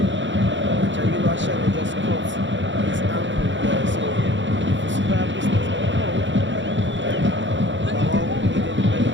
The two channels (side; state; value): left; late; 0.54 ms